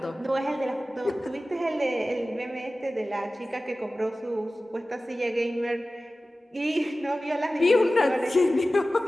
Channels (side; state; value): both; normal; correlation 0.96